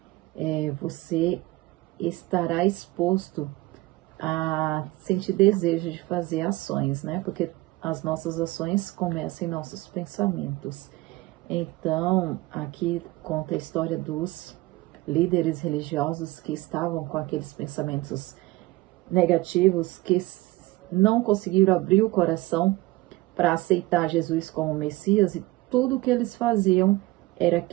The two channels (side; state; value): left; quieter; 20.0 dB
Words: você estará exposto a sentir desejo de fazer ações, né? Porque as nossas ações começam em nossos pensamentos. Então, aqui conta a história dos líderes religiosos que estavam com aqueles pensamentos negativos, que não conseguiram abrir o coração para aceitar Jesus como Messias, e tudo que eles faziam era